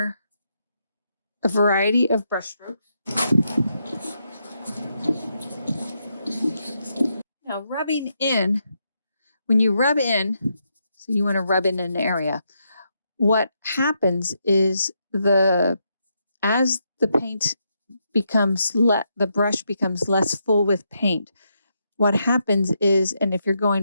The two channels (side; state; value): both; inverted; correlation -0.81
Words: a variety of brush strokes. Now rubbing in, when you rub in, so you want to rub in an area, what happens is as the paint becomes the brush becomes less full with paint, what happens is, and if you're